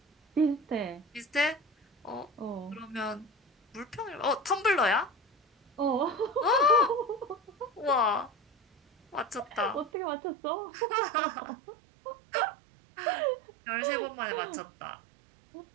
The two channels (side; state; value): left; drops out; at 9.9 s